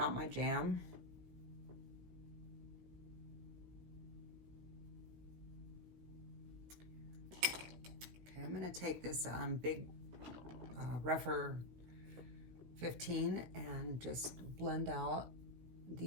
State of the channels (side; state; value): left; late; 17 ms